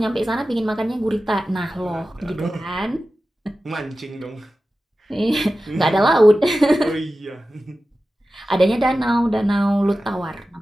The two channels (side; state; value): both; normal; correlation 0.94